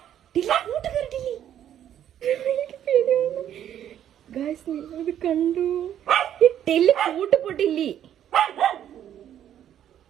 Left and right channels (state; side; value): quieter; left; 10.5 dB